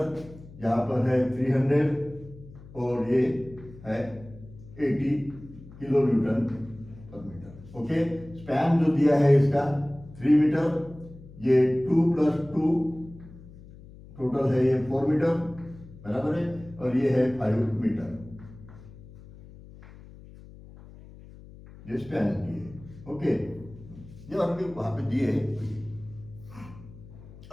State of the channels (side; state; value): left; noise; hum, 19 dB below the sound